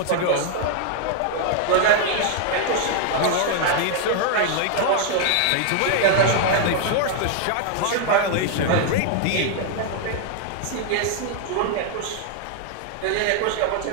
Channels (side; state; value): both; different; correlation 0.00